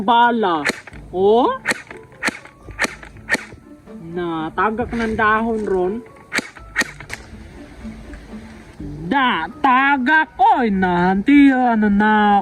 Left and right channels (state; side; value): identical; both; correlation 1.00